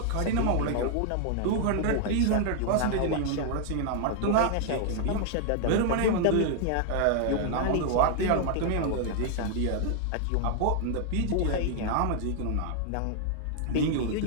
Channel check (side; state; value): both; different; correlation 0.00